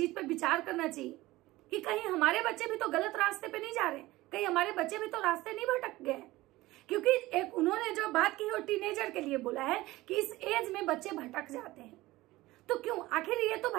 पे विचार करना चाहिए कि कहीं हमारे बच्चे भी तो गलत रास्ते पे नहीं जा रहे, कहीं हमारे बच्चे भी तो रास्ते नहीं भटक गए। क्योंकि एक उन्होंने जो बात की है वो टीनेजर के लिए बोला है कि इस एज में बच्चे भटक जाते हैं। तो क्यों? आखिर ये तो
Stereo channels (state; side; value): quieter; left; 18.6 dB